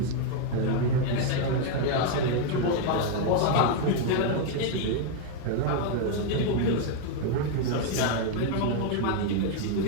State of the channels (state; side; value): different; both; correlation 0.00